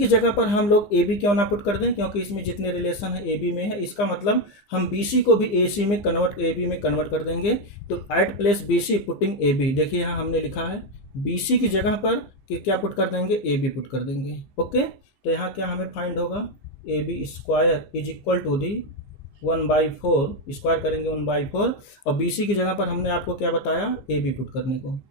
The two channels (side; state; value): right; late; 15 ms